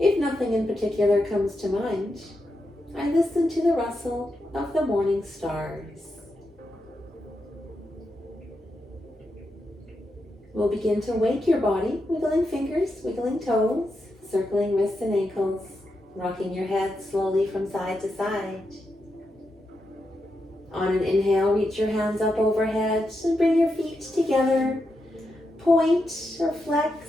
nothing in particular comes to mind, I listen to the rustle of the morning stars. We'll begin to wake your body, wiggling fingers, wiggling toes, circling wrists and ankles, rocking your head slowly from side to side. On an inhale, reach your hands up overhead and bring your feet together. Point or flex,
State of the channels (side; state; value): both; normal; correlation 0.85